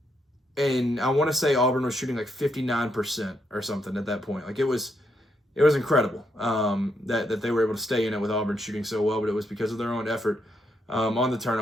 and I want to say Auburn was shooting like 59% or something at that point. Like it was incredible that they were able to stay in it with Auburn shooting so well, but it was because of their own effort on the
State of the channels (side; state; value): both; normal; correlation 0.78